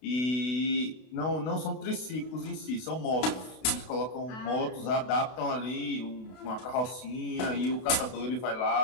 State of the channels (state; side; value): late; right; 32 ms